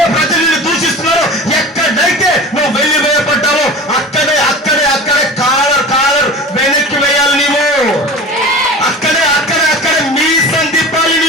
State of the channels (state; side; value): normal; both; correlation 0.35